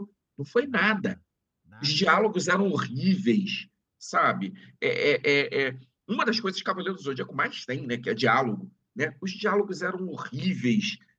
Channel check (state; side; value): identical; both; correlation 1.00